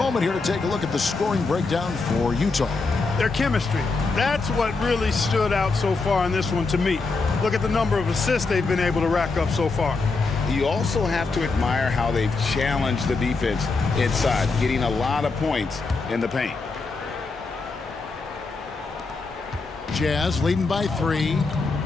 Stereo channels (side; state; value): right; quieter; 4.0 dB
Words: here to take a look at the scoring breakdown for Utah. Their chemistry. That's what really stood out so far in this one to me. Look at the number of assists they've been able to rack up so far. You also have to admire how they've challenged the defense inside, getting a lot of points in the paint. Jazz leading by 3.